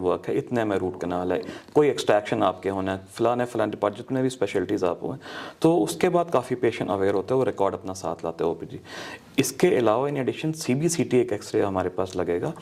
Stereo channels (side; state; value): both; identical; correlation 1.00